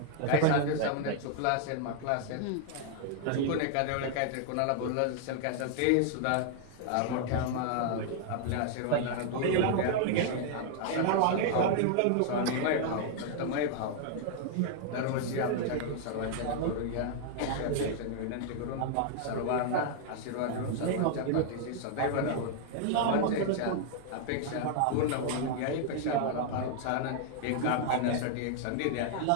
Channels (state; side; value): different; both; correlation 0.00